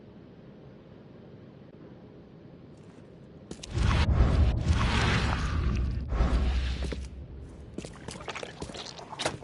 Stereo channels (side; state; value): both; identical; correlation 1.00